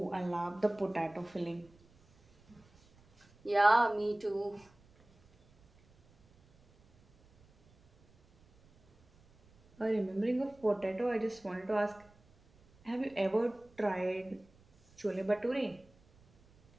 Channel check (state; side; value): noise; right; rumble, 30 dB below the sound